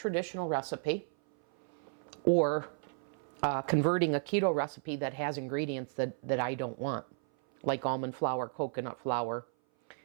recipe, or converting a keto recipe that has ingredients that I don't want, like almond flour, coconut flour,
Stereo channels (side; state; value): left; silent; 55 dB below the other